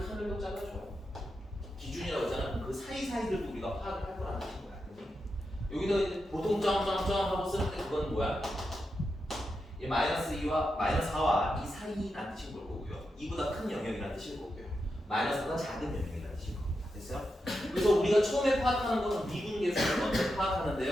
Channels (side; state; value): both; normal; correlation 0.87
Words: 칸을 잘라줘요. 기준이라고 했잖아. 그럼 그 사이사이들도 우리가 파악을 할 거라는 뜻인 거야. 여기다 이제 보통 점점점 하고 쓸 때 그건 뭐야? 이 마이너스 2와 마이너스 4와 이 사이란 뜻인 걸 거고요. 2보다 큰 영역이라는 뜻일 거고요. 마이너스보다 작은 영역이라는 뜻일 겁니다. 됐어요? 그래서 우리가 처음에 파악하는 것은 미분계수를 먼저